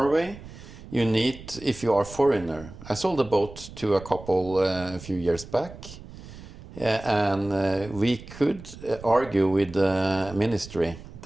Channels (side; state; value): right; noise; rumble, 16 dB below the sound